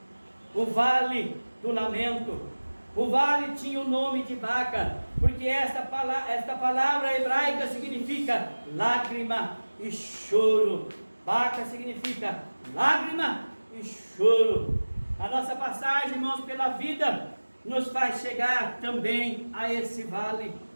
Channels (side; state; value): both; inverted; correlation -1.00